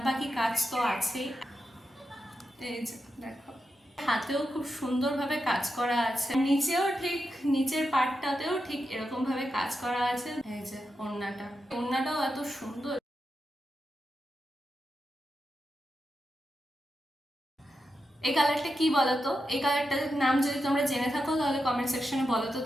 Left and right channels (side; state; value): both; normal; correlation 0.88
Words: বাকি কাজ তো আছেই। এই যে দেখো, হাতেও খুব সুন্দরভাবে কাজ করা আছে, নিচেও ঠিক নিচের পাটটাতেও ঠিক এরকম ভাবে কাজ করা আছে। এই যে ওড়নাটাও এত সুন্দর। এই কালারটা কি বলতো? এই কালারটার নাম যদি তোমরা জেনে থাকো তাহলে কমেন্ট সেকশনে বলো তো,